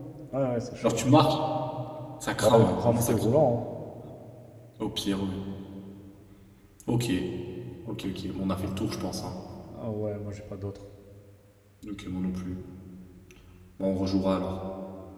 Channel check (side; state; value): both; identical; correlation 1.00